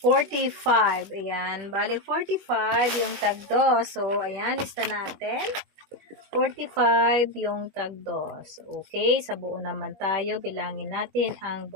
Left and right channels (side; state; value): left; late; 21 ms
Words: 45. Ayan. Bali, 45 yung tag 2. So, ayan. Lista natin. 45 yung tag 2. Okay. Sa buo naman tayo. Bilangin natin ang